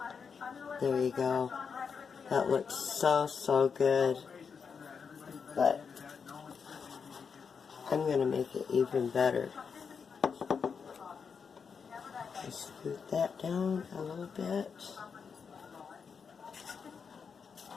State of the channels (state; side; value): quieter; right; 6.0 dB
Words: There you go. That looks so good. But I'm going to make it even better. Just scoot that down a little bit.